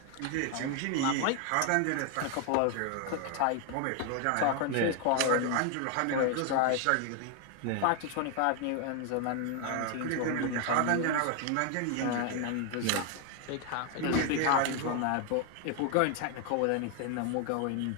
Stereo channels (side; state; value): both; different; correlation 0.00